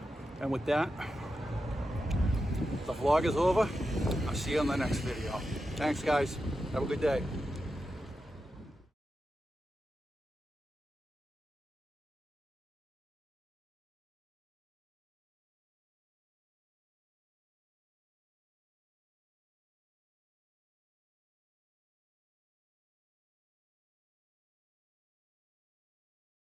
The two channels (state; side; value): normal; both; correlation 0.89